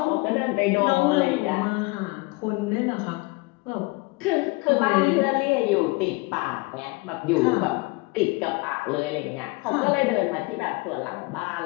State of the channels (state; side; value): quieter; right; 25.2 dB